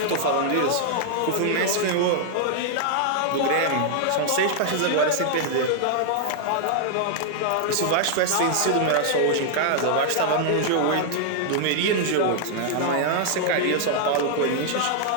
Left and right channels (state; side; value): different; both; correlation -0.01